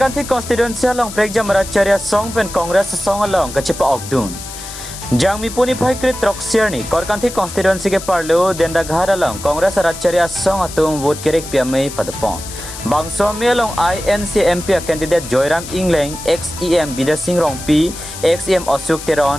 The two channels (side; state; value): left; noise; hiss, 12 dB below the sound